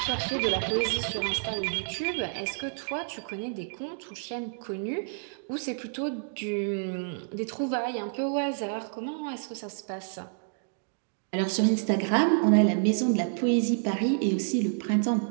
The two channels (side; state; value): left; silent; digital silence